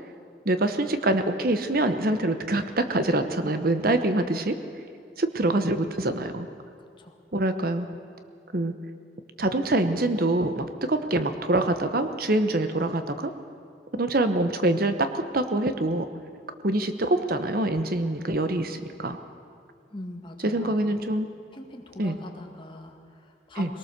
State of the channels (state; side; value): normal; both; correlation 0.44